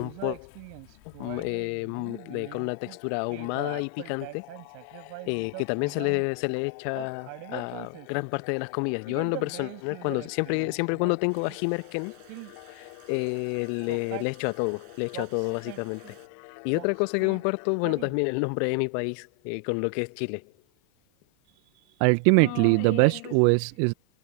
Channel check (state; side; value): different; both; correlation 0.00